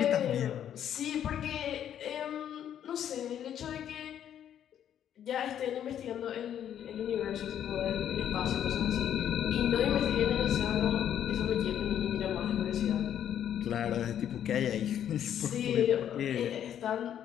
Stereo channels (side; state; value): right; quieter; 9.9 dB